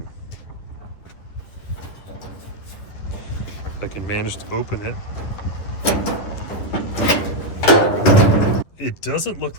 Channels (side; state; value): right; late; 10 ms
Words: If I can manage to open it. It doesn't look